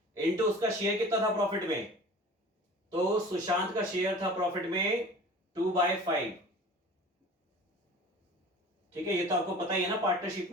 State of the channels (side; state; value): both; normal; correlation 0.42